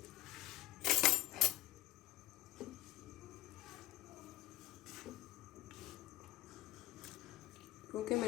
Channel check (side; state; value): right; quieter; 15.3 dB